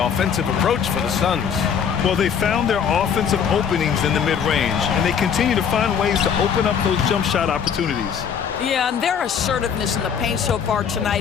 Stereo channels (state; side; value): quieter; right; 7.4 dB